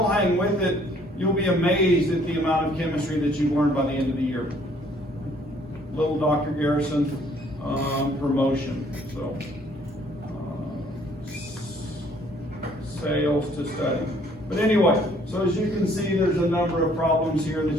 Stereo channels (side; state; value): both; normal; correlation 0.61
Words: hang with it, you'll be amazed at the amount of chemistry that you've learned by the end of the year. Little Dr. Garrison promotion, so sales to study. But anyway, so as you can see, there's a number of problems here that